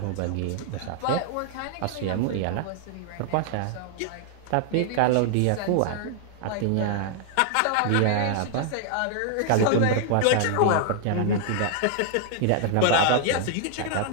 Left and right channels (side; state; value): both; different; correlation -0.01